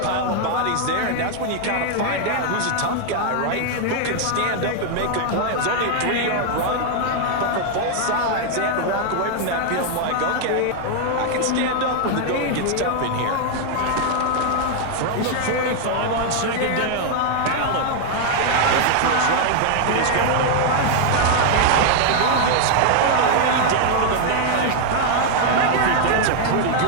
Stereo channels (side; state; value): both; different; correlation 0.00